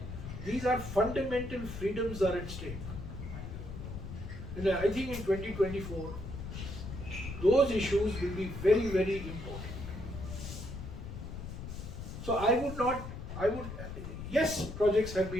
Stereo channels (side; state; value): left; noise; rumble, 8 dB below the sound